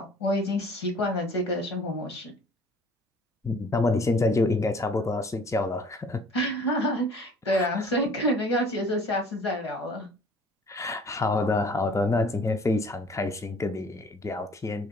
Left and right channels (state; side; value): normal; both; correlation 0.51